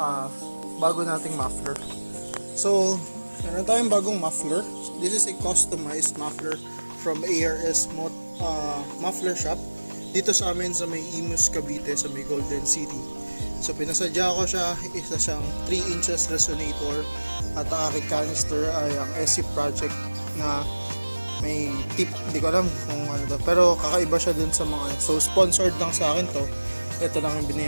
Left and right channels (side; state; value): both; inverted; correlation -1.00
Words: bago nating muffler. So, meron tayong bagong muffler. This is a customized muffler from ARS Muffler Shop dito sa amin sa may Imus, Cavite, sa may Golden City. So pinasadya ko siya, isa siyang 3 inches resonator at ang aking canister ay ang SC Project na may tip, hindi ko alam kung ano to, pero kakaiba siya dun sa mga, so sponsored lang sa akin to, ito lang yung